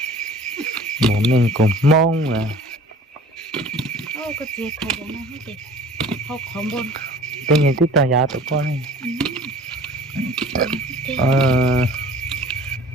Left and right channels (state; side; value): normal; both; correlation 0.47